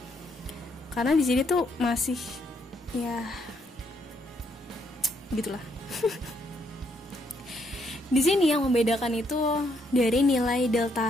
Karena di sini tuh masih ya gitulah. Di sini yang membedakan itu dari nilai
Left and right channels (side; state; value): both; normal; correlation 0.73